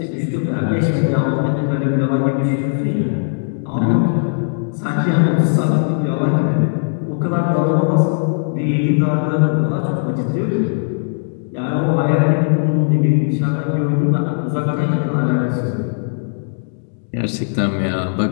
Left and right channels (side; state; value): right; silent; digital silence